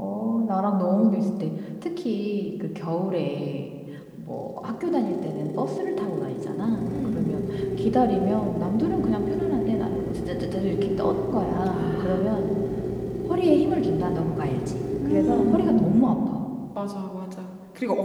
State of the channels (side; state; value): both; identical; correlation 1.00